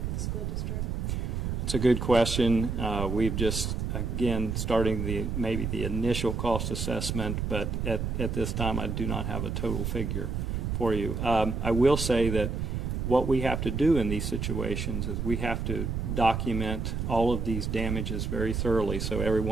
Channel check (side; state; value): right; noise; rumble, 2 dB below the sound